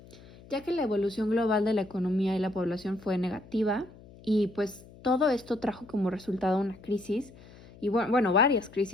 ya que la evolución global de la economía y la población fue negativa y pues todo esto trajo como resultado una crisis y bueno, varias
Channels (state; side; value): noise; left; hum, 21 dB below the sound